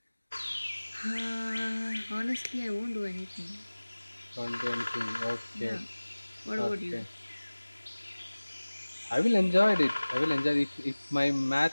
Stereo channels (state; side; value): inverted; both; correlation -1.00